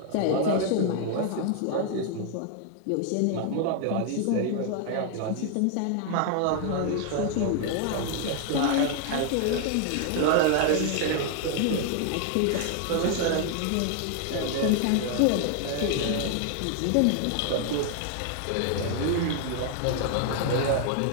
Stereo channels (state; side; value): different; both; correlation 0.00